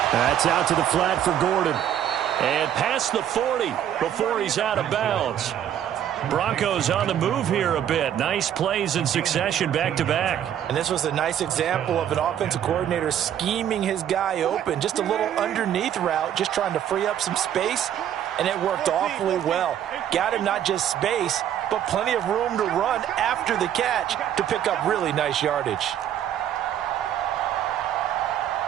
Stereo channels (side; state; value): left; quieter; 10.3 dB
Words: That's out to the flat for Gordon. And past the 40 before he's out of bounds. Broncos on the move here a bit. Nice plays in succession back-to-back. And this was a nice example of an offensive coordinator scheming his guy open. Just a little underneath route, just trying to free up some space, and it worked awfully well. Got him not just space, but plenty of room to run after the catch to pick up really nice yardage.